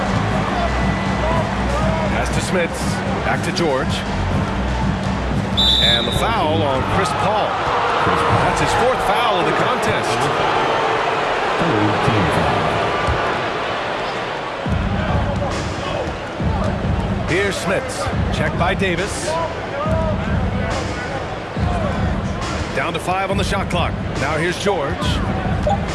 Pass to Smits. Back to George. And the foul on Chris Paul. That's his 4th foul of the contest. Smits. Check by Davis. Down to 5 on the shot clock. Now here's George.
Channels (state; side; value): identical; both; correlation 1.00